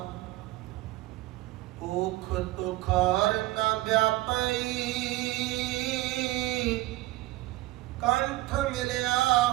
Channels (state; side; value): quieter; left; 18.6 dB